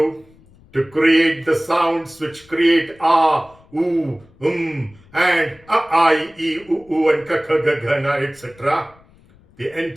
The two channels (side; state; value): left; noise; rumble, 28 dB below the sound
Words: to create the sounds which create A, U, and A, I, E, U, and K, K, G, G, N, etc. The